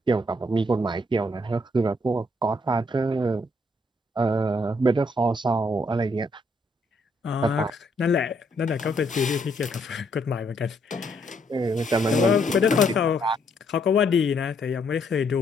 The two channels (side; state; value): both; normal; correlation 0.71